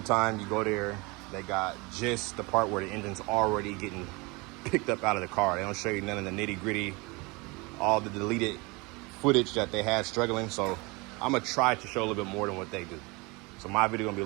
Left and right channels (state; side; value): quieter; left; 26.1 dB